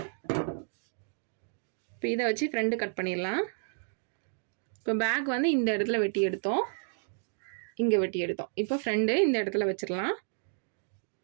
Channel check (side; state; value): left; silent; digital silence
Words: இப்போ இதை வச்சு ஃப்ரண்ட் கட் பண்ணிடலாம். இப்போ பேக் வந்து இந்த இடத்துல வெட்டி எடுத்தோம், இங்கே வெட்டி எடுத்தோம். இப்போ ஃப்ரண்ட் இந்த இடத்துல வச்சிடலாம்.